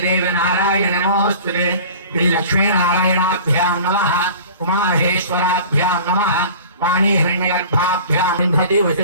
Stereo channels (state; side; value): inverted; both; correlation -0.42